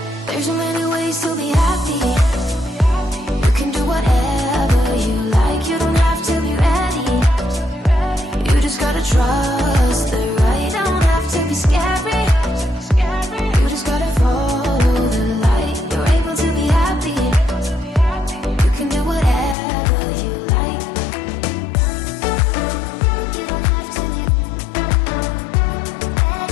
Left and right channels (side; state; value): right; drops out; at 19.6 s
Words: There's so many ways to be happy. You can do whatever you like. You don't have to be ready. You just gotta trust the right. Don't have to be scary. You just gotta follow the light. You're able to be happy. You can do whatever you like. You don't have to be